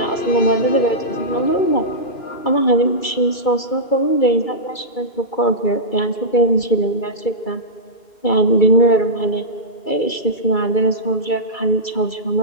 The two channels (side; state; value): right; late; 2.3 ms